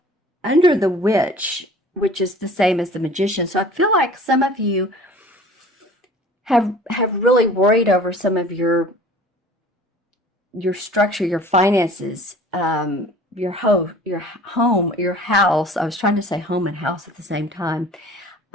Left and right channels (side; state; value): both; normal; correlation 0.46